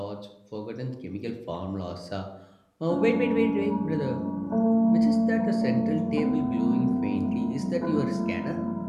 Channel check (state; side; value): identical; both; correlation 1.00